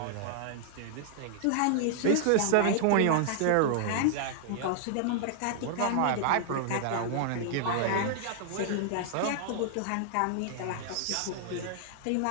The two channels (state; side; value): different; both; correlation -0.01